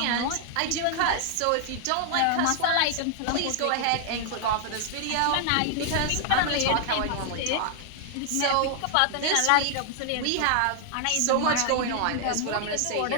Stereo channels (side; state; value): both; different; correlation 0.00